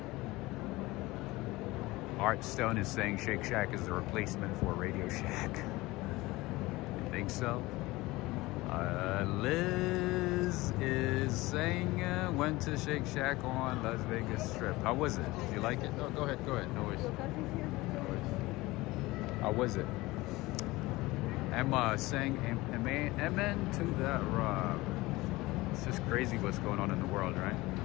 Art Stone is saying Shake Shack is the replacement for Radio Shack. You think so? Liz is saying went to Shake Shack on Las Vegas Strip. How was it? Did you like it? Oh, go ahead. No worries. How was it? Emma saying amen to that, Rob. It's just crazy what's going on in the world, right?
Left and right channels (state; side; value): quieter; right; 20.3 dB